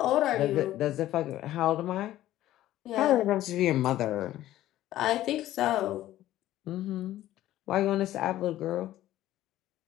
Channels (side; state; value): right; quieter; 14.1 dB